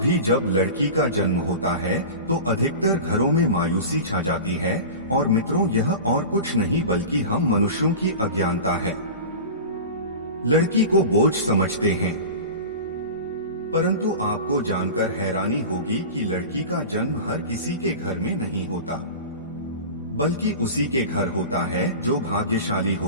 जब लड़की का जन्म होता है तो अधिकतर घरों में मायूसी छा जाती है। और मित्रों, यह और कुछ नहीं बल्कि हम मनुष्यों की अज्ञानता है। लड़की को बोझ समझते हैं, परंतु आपको जानकर हैरानी होगी कि लड़की का जन्म हर किसी के घर में नहीं होता, बल्कि उसी के घर होता है जो भाग्यशाली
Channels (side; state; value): both; inverted; correlation -0.32